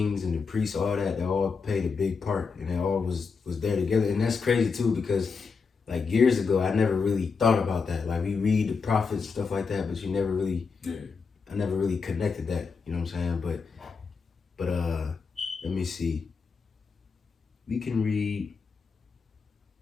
and the priests, all that, they all played a big part, and they all was there together. And that's crazy, too, because, like, years ago, I never really thought about that. Like, we read the prophets, stuff like that, but I never really connected that, you know what I'm saying? But let me see. We can read,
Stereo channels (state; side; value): quieter; right; 5.1 dB